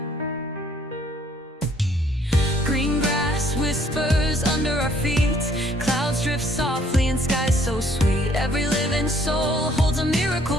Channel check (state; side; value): normal; both; correlation 0.62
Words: Green grass whispers under our feet. Clouds drift softly in skies so sweet. Every living soul holds a miracle